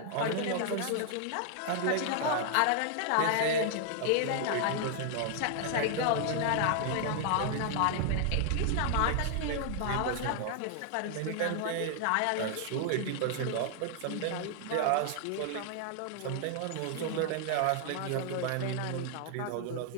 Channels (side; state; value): both; different; correlation 0.00